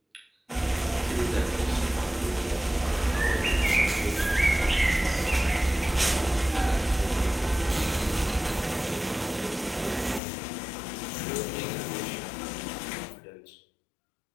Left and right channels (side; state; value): right; drops out; at 10.2 s